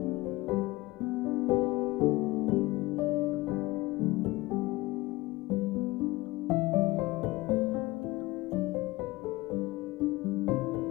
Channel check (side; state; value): right; quieter; 20.4 dB